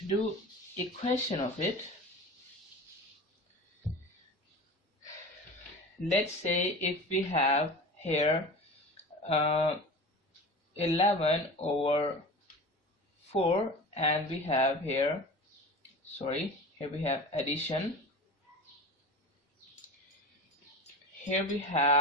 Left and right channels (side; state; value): both; normal; correlation 0.33